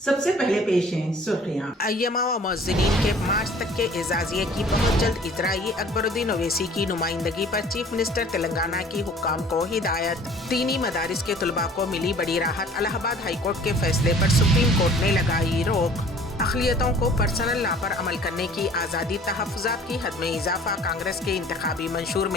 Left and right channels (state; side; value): normal; both; correlation 0.50